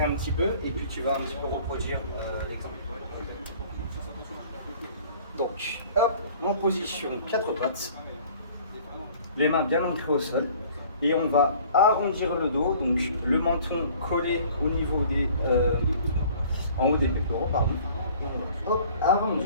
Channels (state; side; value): inverted; both; correlation -0.51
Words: un petit peu et puis tu vas un petit peu reproduire l'exemple. Donc, hop, en position 4 pattes, les mains bien ancrées au sol, et on va arrondir le dos, donc le menton collé au niveau des, en haut des pectoraux, pardon. Et on va, hop,